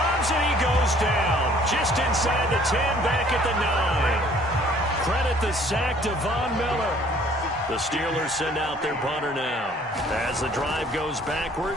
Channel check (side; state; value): both; normal; correlation 0.57